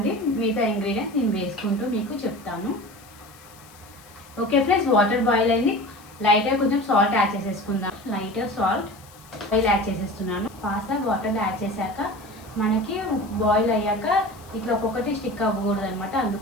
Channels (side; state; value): left; noise; hiss, 24 dB below the sound